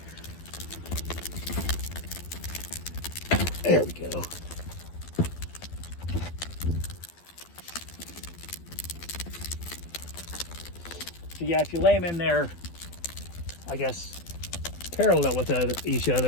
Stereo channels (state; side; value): late; right; 12 ms